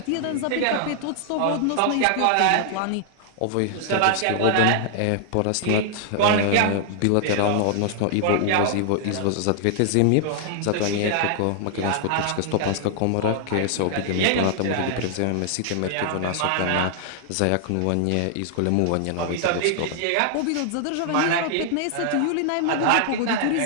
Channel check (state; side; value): different; both; correlation -0.01